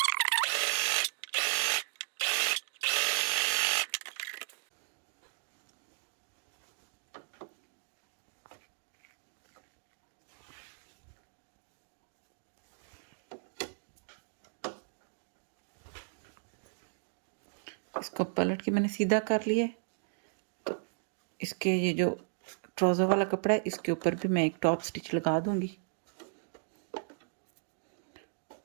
इसको पलट के मैंने सीधा कर लिया। तो इसके ये जो ट्राउज़र वाला कपड़ा है इसके ऊपर भी मैं एक टॉप स्टिच लगा दूंगी,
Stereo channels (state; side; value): silent; left; digital silence